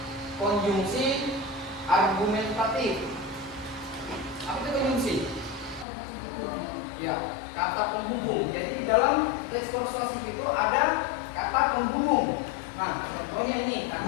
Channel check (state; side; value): drops out; right; at 5.9 s